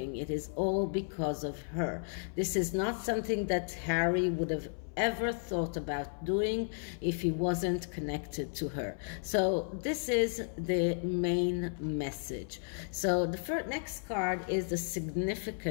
It is all because of her. This is not something that Harry would have ever thought about doing if he wasn't connected to her. So this is the main message. So the next card is the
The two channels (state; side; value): silent; right; 55 dB below the other